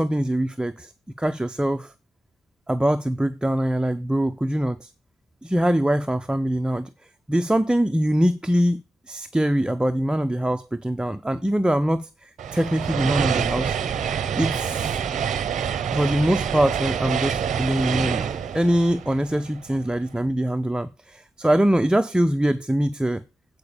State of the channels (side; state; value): both; normal; correlation 0.92